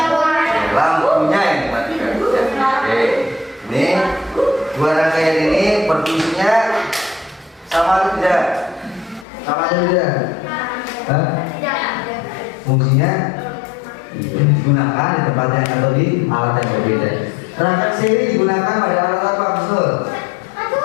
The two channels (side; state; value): right; drops out; at 9.2 s